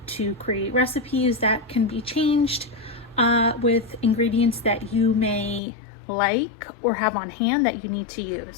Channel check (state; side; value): drops out; right; at 5.6 s